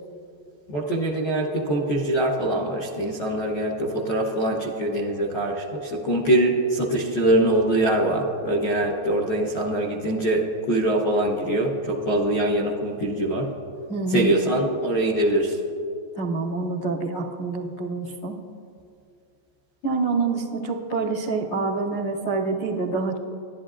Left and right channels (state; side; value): late; right; 14 ms